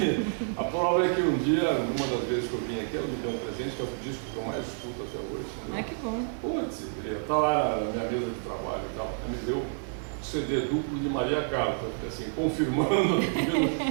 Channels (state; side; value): silent; left; digital silence